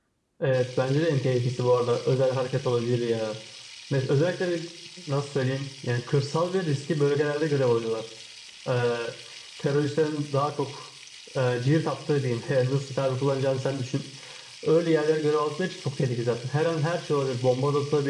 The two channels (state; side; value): identical; both; correlation 1.00